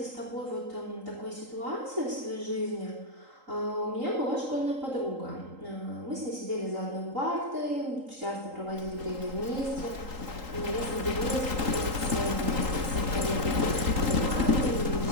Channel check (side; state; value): left; late; 3.8 ms